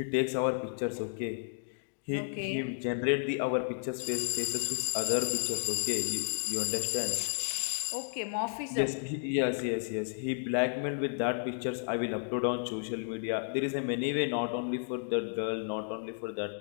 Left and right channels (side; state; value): right; silent; digital silence